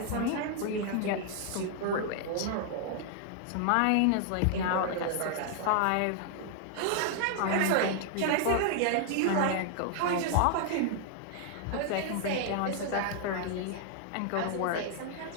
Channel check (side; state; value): both; different; correlation 0.00